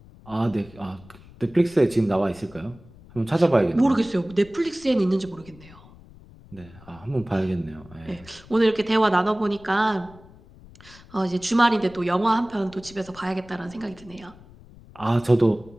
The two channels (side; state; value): left; noise; rumble, 22 dB below the sound